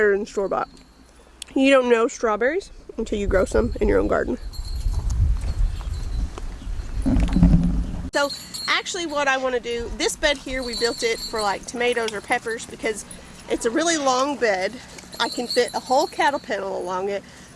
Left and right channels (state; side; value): identical; both; correlation 1.00